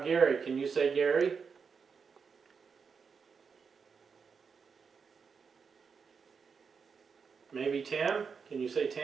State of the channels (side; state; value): left; quieter; 5.8 dB